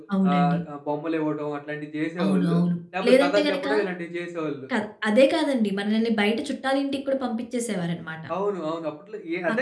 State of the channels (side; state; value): both; identical; correlation 1.00